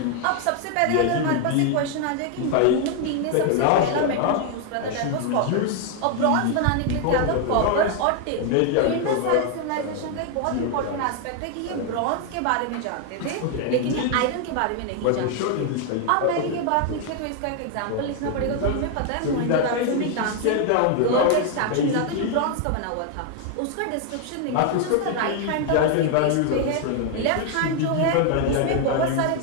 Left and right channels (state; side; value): different; both; correlation 0.00